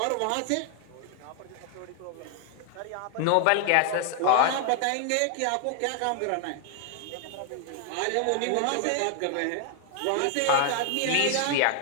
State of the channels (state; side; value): different; both; correlation 0.00